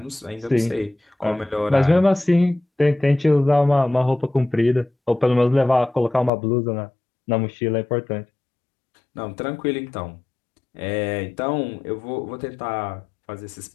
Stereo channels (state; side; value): drops out; right; at 6.3 s